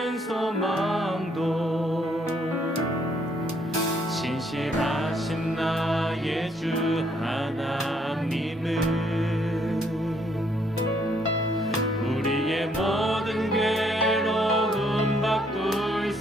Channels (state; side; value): normal; both; correlation 0.69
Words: 소망도 신실하신 나의 주 하나님은 우리의 모든 괴로움 바꿀